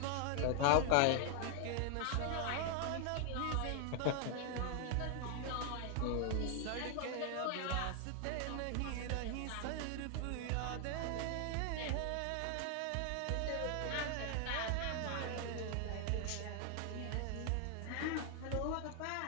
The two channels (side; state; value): both; different; correlation 0.00